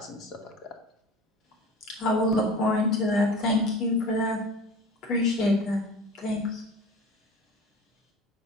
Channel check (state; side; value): normal; both; correlation 0.37